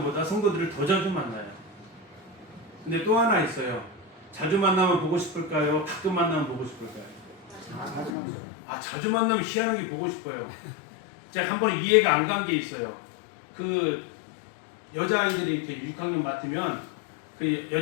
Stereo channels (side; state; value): right; drops out; at 8.2 s